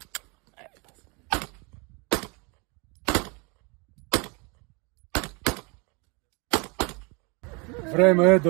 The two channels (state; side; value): quieter; left; 30.3 dB